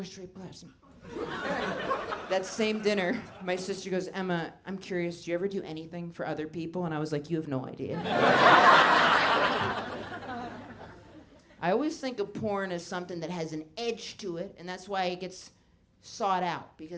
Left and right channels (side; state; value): both; identical; correlation 1.00